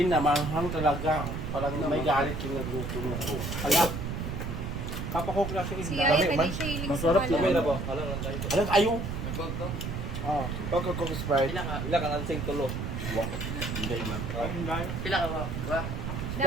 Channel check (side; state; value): right; noise; rumble, 4 dB below the sound